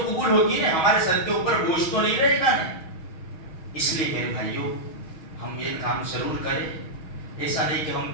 قبول ہوگی نا، ہمارے سر کے اوپر بوجھ تو نہیں رہے گا نا۔ اس لیے میرے بھائیوں ہم یہ کام ضرور کریں، ایسا نہیں کہ ہم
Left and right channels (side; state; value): right; late; 6.2 ms